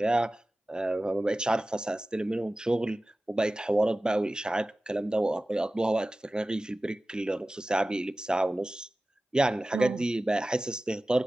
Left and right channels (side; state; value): both; normal; correlation 0.96